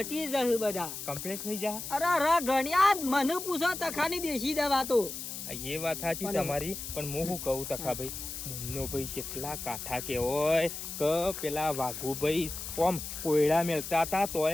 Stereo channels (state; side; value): noise; left; hiss, 8 dB below the sound